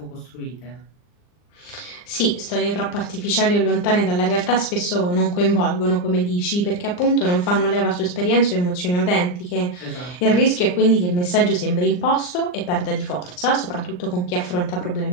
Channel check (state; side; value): late; right; 39 ms